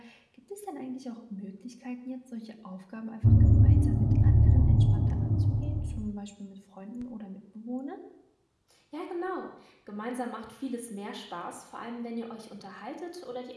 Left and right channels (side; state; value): both; identical; correlation 1.00